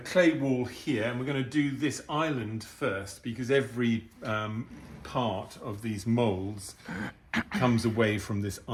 clay wall here, and we're going to do this island first because every part of these molds comes away from this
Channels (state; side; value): identical; both; correlation 1.00